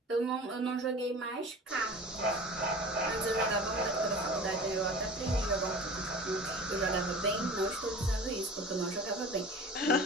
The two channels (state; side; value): normal; both; correlation 0.39